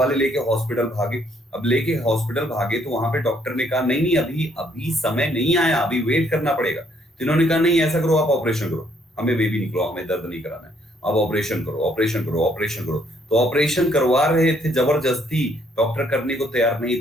लेके हॉस्पिटल भागे। अब लेके हॉस्पिटल भागे तो वहां पे डॉक्टर ने कहा नहीं नहीं, अभी अभी समय नहीं आया, अभी वेट करना पड़ेगा। तो इन्होंने कहा नहीं ऐसा करो, आप ऑपरेशन करो, हमें बेबी निकलो, हमें दर्द नहीं कराना है, अब ऑपरेशन करो, ऑपरेशन करो, ऑपरेशन करो। तो ऑपरेशन करवा रहे थे जबरदस्ती, डॉक्टर करने को तैयार नहीं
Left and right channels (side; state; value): both; normal; correlation 0.68